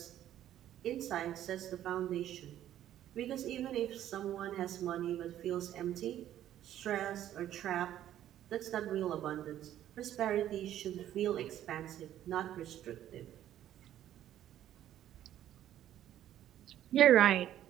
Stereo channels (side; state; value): left; quieter; 11.9 dB